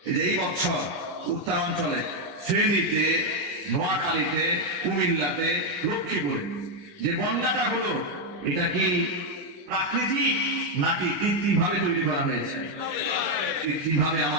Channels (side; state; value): left; late; 9.8 ms